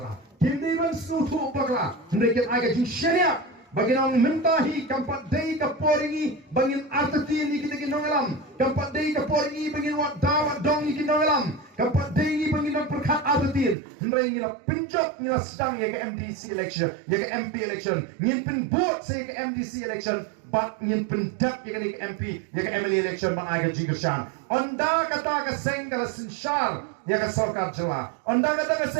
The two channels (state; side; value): drops out; left; at 13.8 s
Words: Kin day ban sutu bakla. Hendak agak jing syariah. Bagi nang mentahi kampat day kaporingi bangin artati ni kita kinong alam. Kampat day kaporingi bangin wat dawat dong ni kinong alam. Kampat day ni bangin nang perkat artati. Hendak ngira penjok ngira sedang ya ke MDC election, ya ke MP election. Ngin pen vote saya ke MDC election. Bat ngin pendak ya ke MP, ya ke MLA election bang agak jingkersan. Onda kata ke seng kala sinsyar ya ke sarkar jela. Onda kata ke